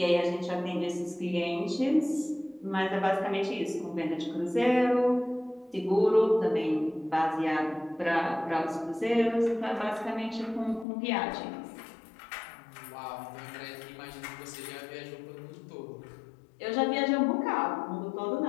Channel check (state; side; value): drops out; right; at 10.9 s